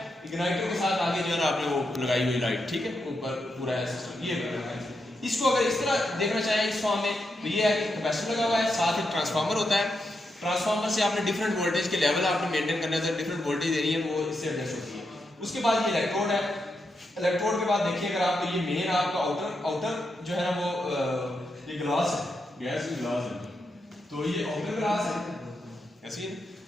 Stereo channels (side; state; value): both; normal; correlation 0.84